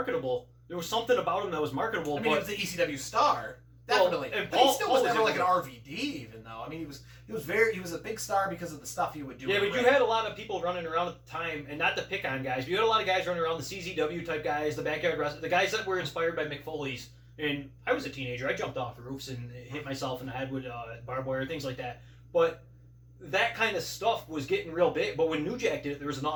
There was something about him that was marketable. He was the ECW star. Definitely. Well, but he still was never like an RVD, even though. He was a big star because of the stuff he would do. Yeah, but you had a lot of people running around at the time, and not to pick on guys, but you had a lot of guys running around, the CZW type guys, the backyard wrestlers, the guys that were inspired by Mick Foley's. And I was a teenager. I jumped off roofs and hit myself in the head with barbed wire, things like that. But that kind of stuff was getting real big. But when New Jack did it, there was an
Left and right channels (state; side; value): identical; both; correlation 1.00